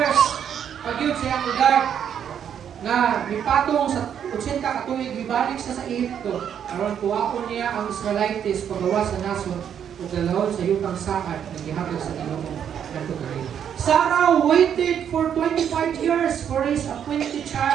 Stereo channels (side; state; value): left; quieter; 8.7 dB